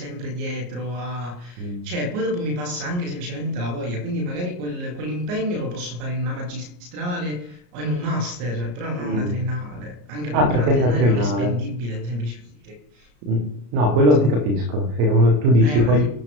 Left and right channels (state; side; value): late; left; 34 ms